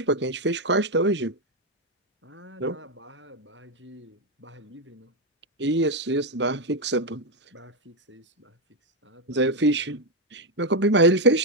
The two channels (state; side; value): normal; both; correlation 0.05